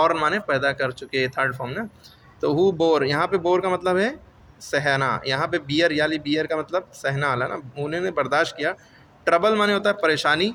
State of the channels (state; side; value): identical; both; correlation 1.00